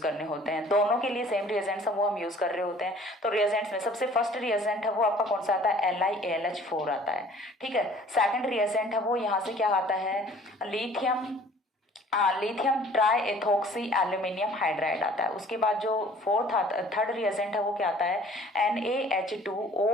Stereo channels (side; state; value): both; normal; correlation 0.52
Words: होते हैं? दोनों के लिए सेम रिएजेंट्स वो हम यूज कर रहे होते हैं। तो रिएजेंट्स में सबसे फर्स्ट रिएजेंट है वो आपका कौन सा आता है? LiAlH4 आता है, ठीक है। सेकंड रिएजेंट है वो यहाँ से क्या आता है? Lithium try ethoxy aluminium hydride आता है। उसके बाद जो थर्ड रिएजेंट है वो क्या आता है?